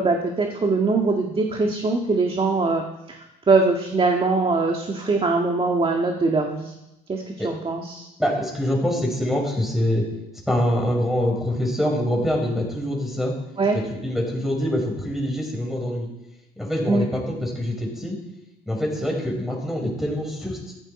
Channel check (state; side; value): normal; both; correlation 0.69